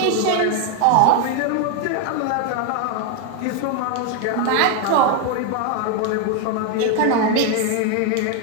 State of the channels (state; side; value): different; both; correlation 0.01